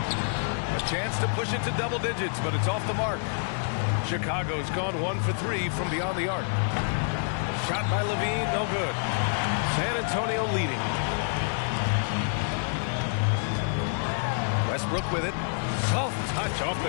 chance to push it to double digits, but it's off the mark. Chicago's gone 1 for 3 from beyond the arc. Shot by Levine, no good. San Antonio leading. Westbrook with it. Soft touch off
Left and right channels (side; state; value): right; silent; digital silence